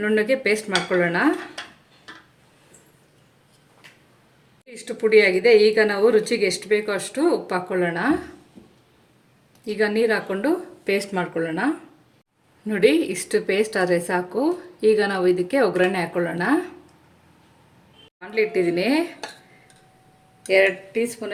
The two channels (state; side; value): identical; both; correlation 1.00